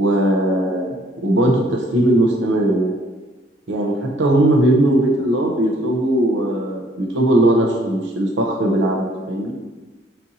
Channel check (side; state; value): both; normal; correlation 0.62